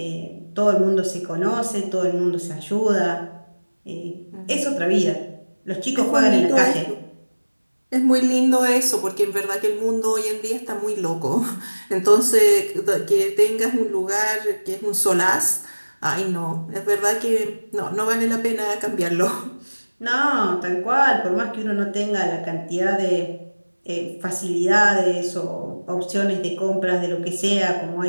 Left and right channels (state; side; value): inverted; both; correlation -1.00